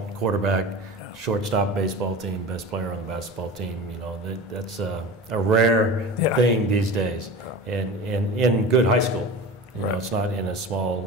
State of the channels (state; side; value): normal; both; correlation 0.33